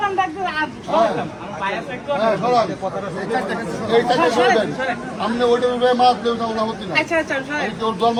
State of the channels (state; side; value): identical; both; correlation 1.00